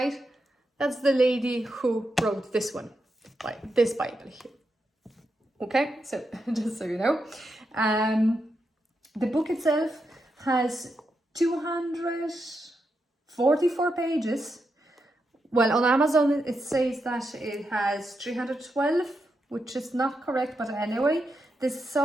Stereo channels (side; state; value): both; normal; correlation 0.85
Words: That's the lady who wrote this one, like this Bible here. Okay, so just so you know. The book itself has 244 pages. Well, on Amazon it says that it has 312, which is not correct, but anyway, the